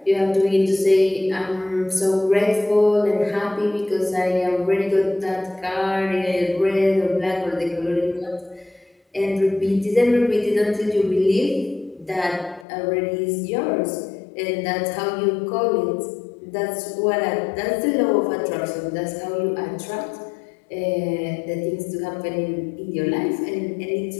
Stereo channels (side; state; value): right; drops out; at 12.7 s